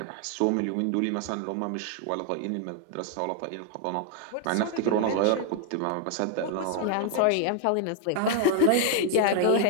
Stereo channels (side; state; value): both; different; correlation 0.00